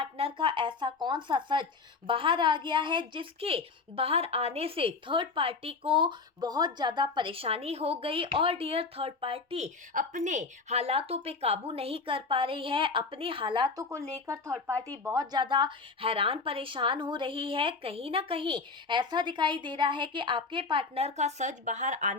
का ऐसा कौन सा सच बाहर आ गया है जिसके बाहर आने से थर्ड पार्टी को बहुत ज़्यादा परेशानी हो गई। और डियर, थर्ड पार्टी अपने हालातों पे काबू नहीं कर पा रही है, अपने हालातों को लेकर थर्ड पार्टी बहुत ज़्यादा हैरान परेशान हो रही है। कहीं ना कहीं ऐसा दिखाई दे रहा है कि आपके पार्टनर का सच बाहर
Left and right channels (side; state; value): right; quieter; 4.3 dB